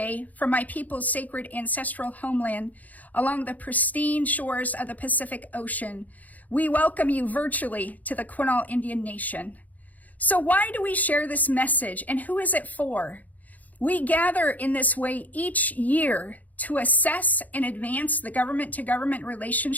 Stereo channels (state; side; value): late; right; 0.078 ms